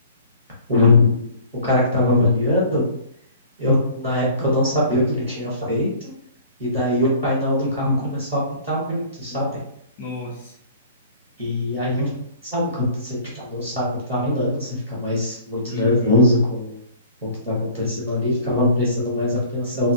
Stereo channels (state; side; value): inverted; both; correlation -0.49